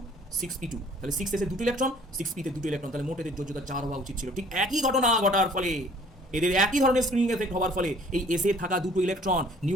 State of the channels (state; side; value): normal; both; correlation 0.54